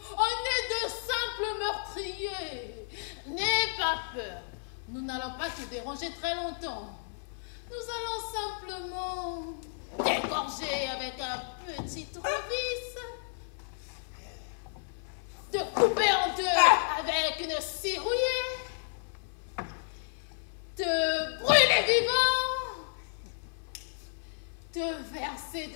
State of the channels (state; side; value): silent; right; 56 dB below the other